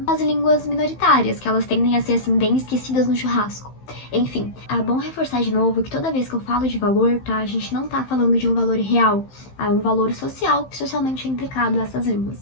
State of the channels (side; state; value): right; late; 15 ms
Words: as línguas minoritárias, que elas tendem a ser, assim, bem esquecidas no churrasco. Enfim, é bom reforçar de novo que toda vez que eu falo de valor, tá, a gente não tá falando de um valor real, é um valor social que socialmente é implicado a essas línguas.